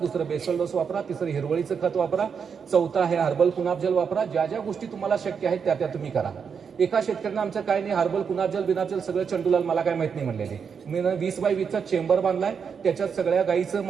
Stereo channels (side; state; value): left; quieter; 6.5 dB